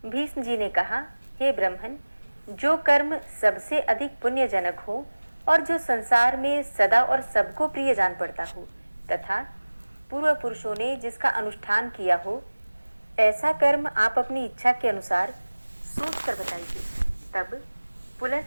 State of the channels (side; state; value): both; inverted; correlation -1.00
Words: भीष्म जी ने कहा, हे ब्रह्मन, जो कर्म सबसे अधिक पुण्यजनक हो और जो संसार में सदा और सबको प्रिय जान पड़ता हो तथा पूर्व पुरुषों ने जिसका अनुष्ठान किया हो, ऐसा कर्म आप अपनी इच्छा के अनुसार सोच कर बताइए। तब